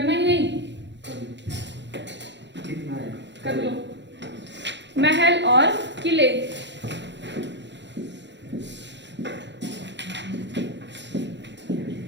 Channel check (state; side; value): late; left; 0.52 ms